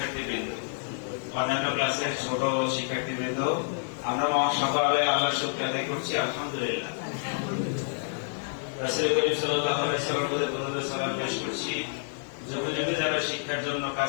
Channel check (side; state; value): right; silent; 59 dB below the other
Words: অন্যান্য ক্লাসের ছোট শিক্ষার্থীবৃন্দ, আমরা সকালে আল্লাহর শুকর আদায় করছি আলহামদুলিল্লাহ। রাসূল করিম সাল্লাল্লাহু আলাইহি ওয়াসাল্লামের সালাম পেশ করছি। যুগে যুগে যারা শিক্ষার জন্য